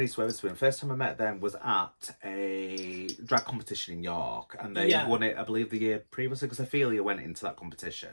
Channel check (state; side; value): inverted; both; correlation -1.00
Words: Weatherspoon. First time I met them was at a drag competition in York, and they won it, I believe, the year previously, because Ophelia went into that